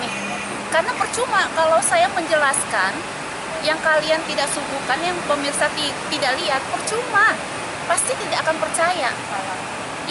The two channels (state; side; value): identical; both; correlation 1.00